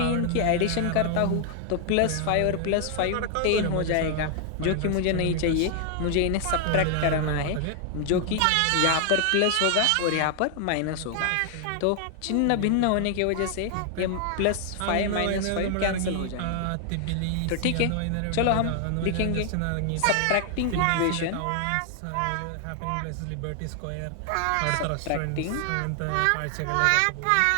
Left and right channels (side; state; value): both; different; correlation 0.00